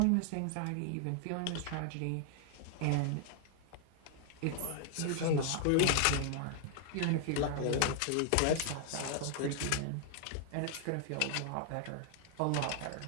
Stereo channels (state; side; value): different; both; correlation 0.00